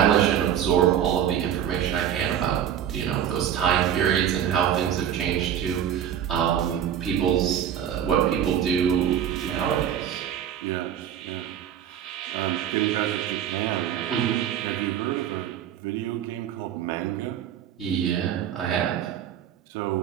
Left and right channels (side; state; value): left; quieter; 9.7 dB